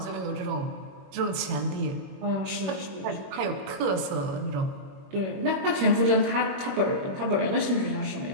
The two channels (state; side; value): late; left; 21 ms